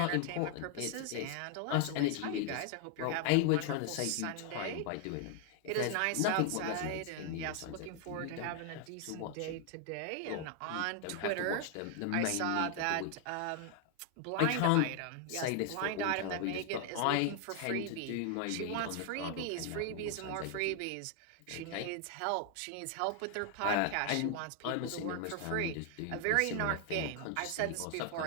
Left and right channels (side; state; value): both; different; correlation 0.00